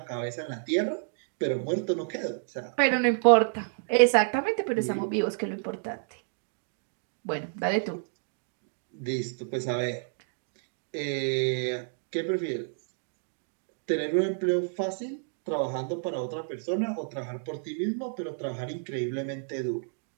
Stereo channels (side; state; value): left; silent; digital silence